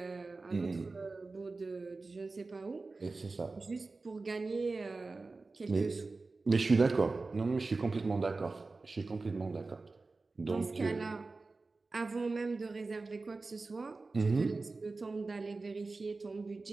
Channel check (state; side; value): quieter; left; 3.7 dB